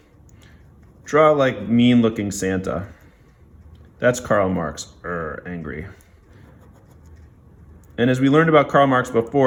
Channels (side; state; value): both; identical; correlation 1.00